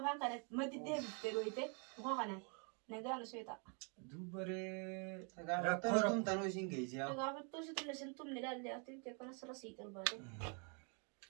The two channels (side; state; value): left; quieter; 37.1 dB